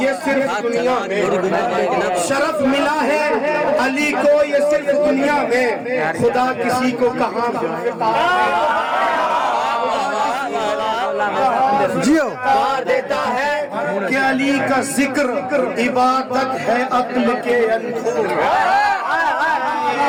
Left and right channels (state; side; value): identical; both; correlation 1.00